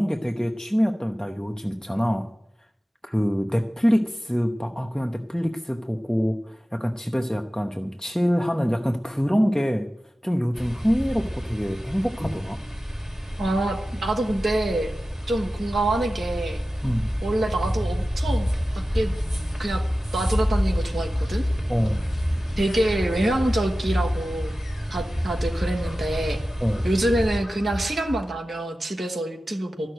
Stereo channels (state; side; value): normal; both; correlation 0.95